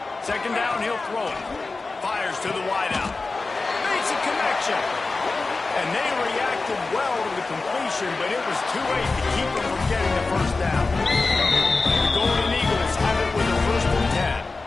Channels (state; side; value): quieter; right; 3.7 dB